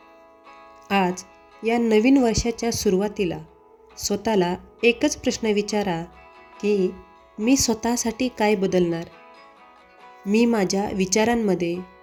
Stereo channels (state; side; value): identical; both; correlation 1.00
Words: आज या नवीन वर्षाच्या सुरुवातीला स्वतःला एकच प्रश्न विचारा की मी स्वतःसाठी काय बदलणार? मी माझ्या विचारांमध्ये